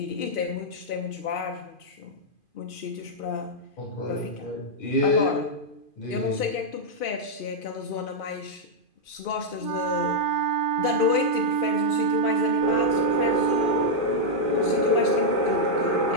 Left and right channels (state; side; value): late; right; 2.5 ms